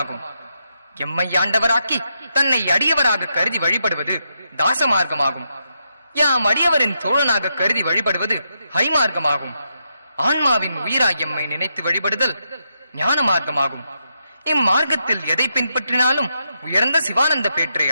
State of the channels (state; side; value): inverted; both; correlation -0.82